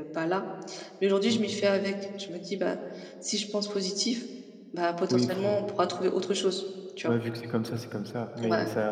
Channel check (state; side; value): identical; both; correlation 1.00